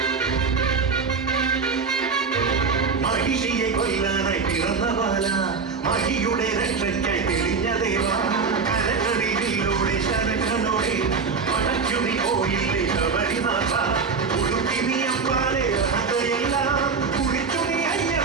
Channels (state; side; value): quieter; left; 5.1 dB